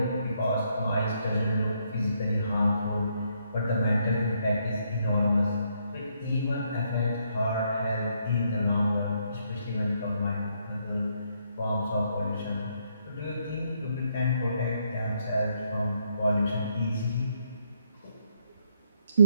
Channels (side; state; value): both; inverted; correlation -0.74